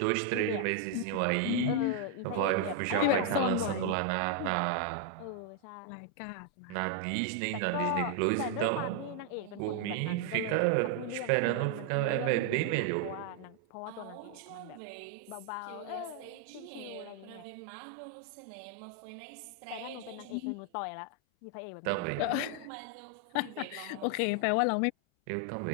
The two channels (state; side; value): different; both; correlation 0.00